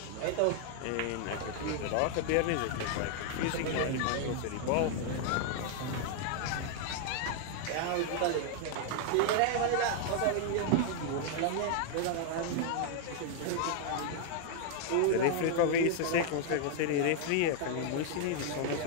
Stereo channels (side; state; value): both; different; correlation 0.00